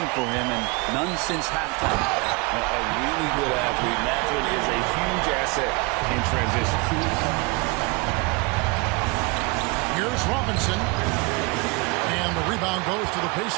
for him, and none since halftime. A really good athlete. Mathurin is a huge asset in transition. Here's Robinson. And the rebound goes to the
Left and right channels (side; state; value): left; quieter; 27.6 dB